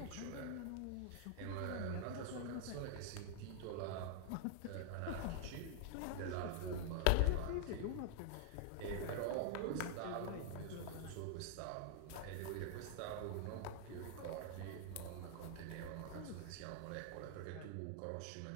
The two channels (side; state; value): both; different; correlation -0.01